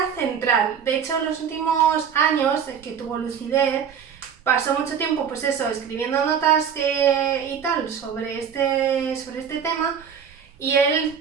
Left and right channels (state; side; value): quieter; left; 7.5 dB